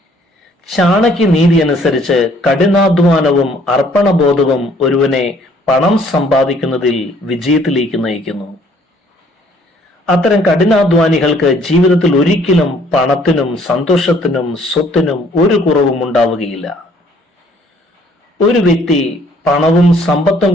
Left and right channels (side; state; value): both; normal; correlation 0.61